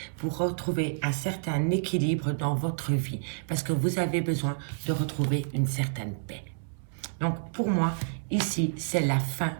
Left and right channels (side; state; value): left; silent; 59 dB below the other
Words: pour retrouver un certain équilibre dans votre vie parce que vous avez besoin de retrouver une certaine paix. Donc, pour moi, ici, c'est la fin